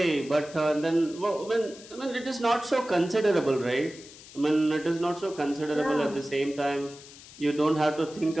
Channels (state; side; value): noise; left; hiss, 19 dB below the sound